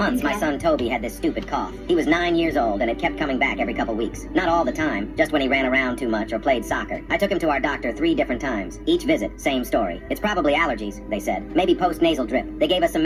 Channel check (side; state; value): both; identical; correlation 1.00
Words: my son Toby had this stupid cough. He was 9 years old, and it kept coming back every couple weeks. Not all the time, just when he ran around too much or played soccer. I took him to our doctor 3 different times. Each visit, same story. It's probably allergies, they said. Maybe post-nasal drip. They gave us some